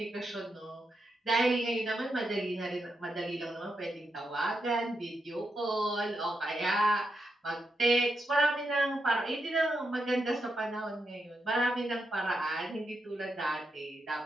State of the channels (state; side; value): normal; both; correlation 0.84